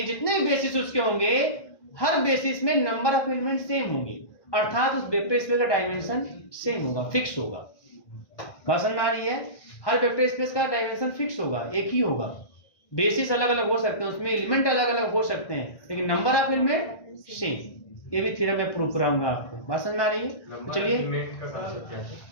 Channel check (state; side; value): late; right; 1.6 ms